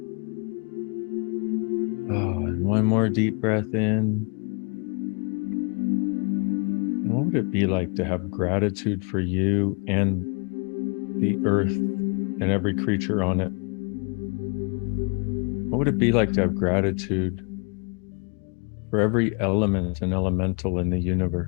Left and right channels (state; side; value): quieter; right; 34.3 dB